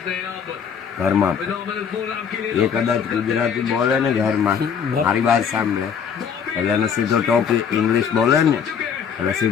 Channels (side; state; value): right; quieter; 7.2 dB